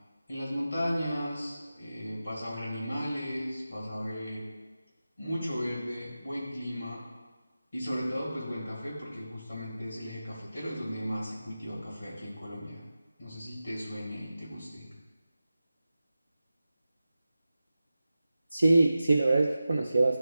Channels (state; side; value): inverted; both; correlation -0.93